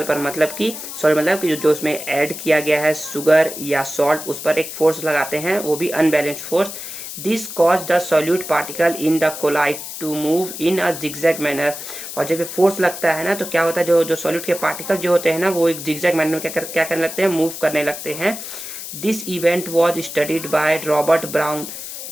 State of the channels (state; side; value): noise; left; hiss, 9 dB below the sound